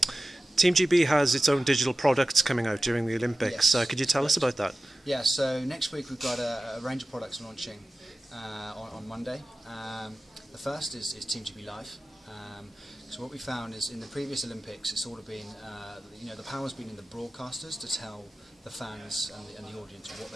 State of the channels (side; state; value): both; normal; correlation 0.95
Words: GB has its own digital products coming out during the Olympics. Yes, Could you tell us about that? Yeah, so next week we've got a range of products launching on Monday. The first is Team GB Live. So what we found is in the previous Olympics, it's sort of been, the power's been in the broadcasters to tell the fans and the audience what